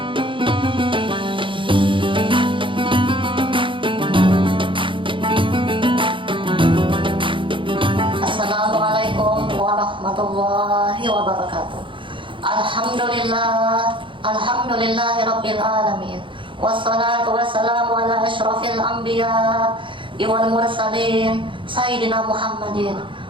warahmatullahi wabarakatuh. Alhamdulillahi rabbil alamin. Wassalatu wassalamu ala asyrafil anbiya wal mursalin sayyidina Muhammadin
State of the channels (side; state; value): left; late; 0.24 ms